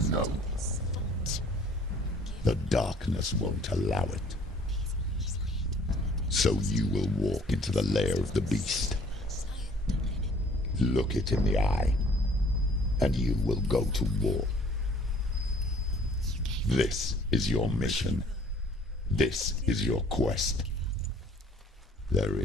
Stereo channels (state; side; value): normal; both; correlation 0.56